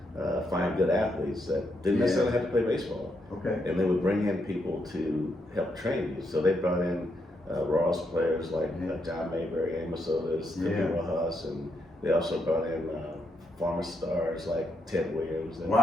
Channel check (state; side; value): normal; both; correlation 0.79